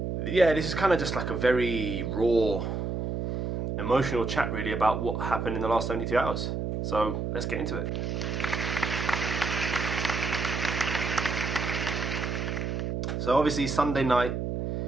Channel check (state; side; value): noise; right; hum, 2 dB below the sound